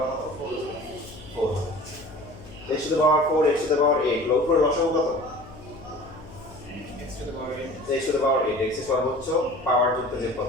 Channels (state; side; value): noise; left; hum, 18 dB below the sound